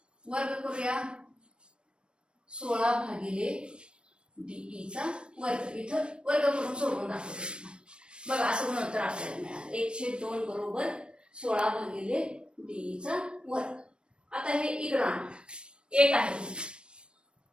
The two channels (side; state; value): left; late; 0.056 ms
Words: वर्ग करूया. 16 भागिले डी चा वर्ग, इथं वर्ग करून सोडवून दाखवतो बघा. असं गुणोत्तर आपल्याला मिळालं 1/2 बरोबर 16 भागिले डी चा वर्ग. आता हे इकडं आणा, 1 आहे